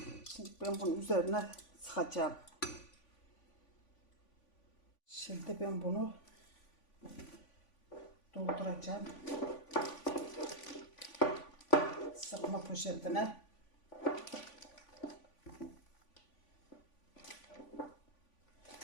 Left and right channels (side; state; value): right; late; 3.5 ms